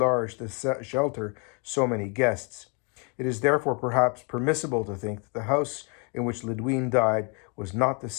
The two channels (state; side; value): quieter; right; 35.2 dB